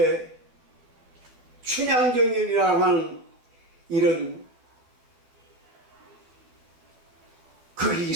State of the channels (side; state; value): left; late; 12 ms